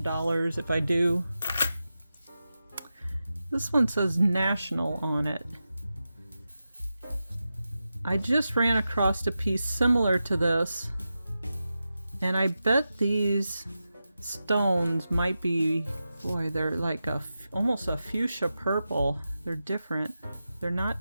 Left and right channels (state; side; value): inverted; both; correlation -0.91